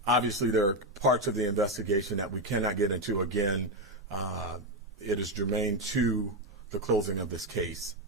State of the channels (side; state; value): both; normal; correlation 0.07